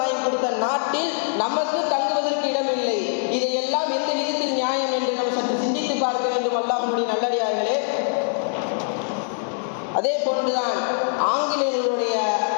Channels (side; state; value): right; silent; digital silence